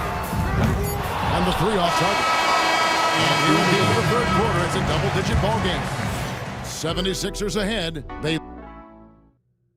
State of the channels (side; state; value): both; identical; correlation 1.00